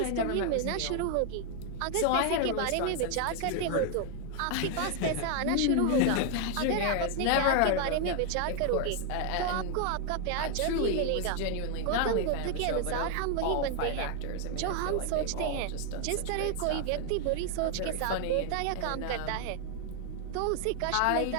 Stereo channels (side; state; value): both; different; correlation 0.00